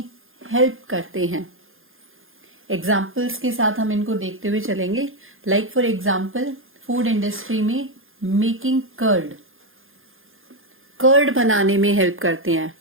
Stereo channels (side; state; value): left; late; 0.60 ms